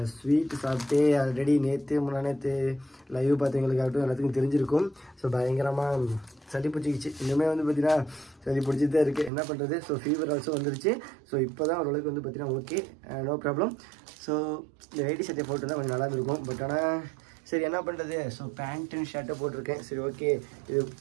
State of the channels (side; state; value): left; drops out; at 9.3 s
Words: ஸ்வீட் சாப்பிட்டு ஆல்ரெடி முன்னாநேற்று லைவ் பார்த்தவங்களுக்காகட்டும் எல்லாத்துக்கும் தெரிஞ்சிருக்கும். ஸோ பயங்கரமாக சளி பிடிச்சிக்கிச்சு. இன்னுமே வந்து பார்த்திங்கன்னா சளி பிடிச்சிட்டு தான் இருக்குது. என்ன பண்ணுறது? ஸோ ஃபீவர் ஆல்சோ வந்துருச்சு. ஸோ இப்போ தான் ஓரளவுக்கு வந்து பார்த்திங்கன்னா ஓகே, நோ ப்ராப்ளம். ஸோ இந்த வேட்டி சட்டையை போட்டு தான் கொஞ்சம் நல்லா இருந்திருக்கும். பட் ஆனால் சரி, என்ன பண்ணுறது? ஸோ பேண்ட் அண்ட் ஷர்ட்டை போட்டிருக்கேன். சரி, ஓகே, இது